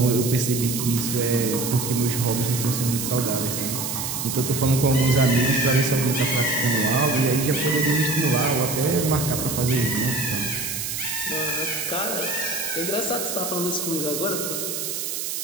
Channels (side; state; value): right; noise; hiss, 4 dB below the sound